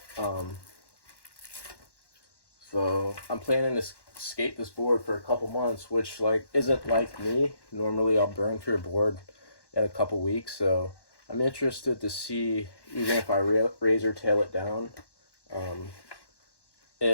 So I'm planning to skate this board for a couple months, which like isn't like me. Normally I'll burn through a board in a couple weeks. So I'm interested to see, even if I razor tail it down,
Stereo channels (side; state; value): right; late; 1.1 ms